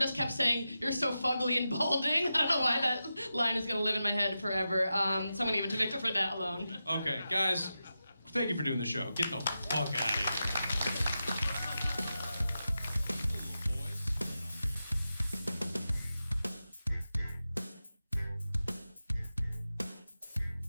kept saying, "You're so fugly and balding." I don't know why that line is gonna live in my head forever. So I'm gonna give it to Victor for that alone. Okay, guys, thank you for doing the show. Get the fuck out of here.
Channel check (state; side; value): inverted; both; correlation -0.91